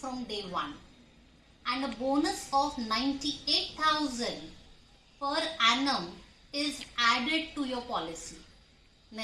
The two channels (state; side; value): identical; both; correlation 1.00